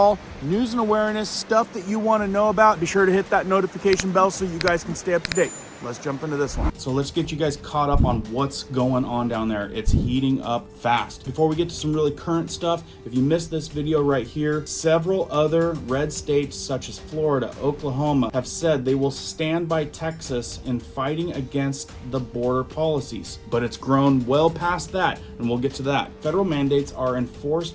news and awareness, stuff that you want to know about, be sure to hit that notification bell so you guys can stay up to date. Let's jump into this one. So let's get you guys caught up on what's going on down there. It's heating up fast. Before we get to some really current stuff, if you missed this video right here, several other red states such as Florida, Oklahoma have said they will stand by Texas in fighting against the border policies. But it's grown well past that, and we'll get to that. Federal mandates are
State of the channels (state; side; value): identical; both; correlation 1.00